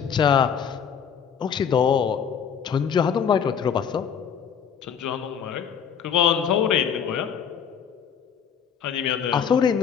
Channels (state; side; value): quieter; right; 7.6 dB